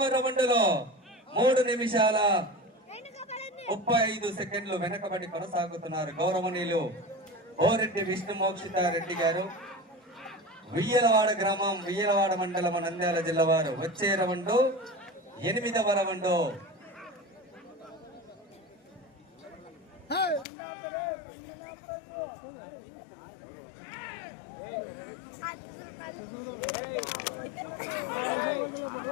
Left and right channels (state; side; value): drops out; right; at 20.5 s